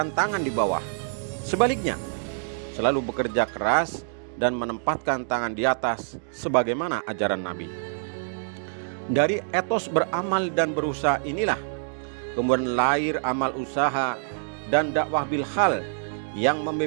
tangan di bawah. Sebaliknya, selalu bekerja keras dan menempatkan tangan di atas sebagaimana ajaran Nabi. Dari etos beramal dan berusaha inilah kemudian lahir amal usaha dan dakwah bil hal yang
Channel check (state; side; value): silent; left; digital silence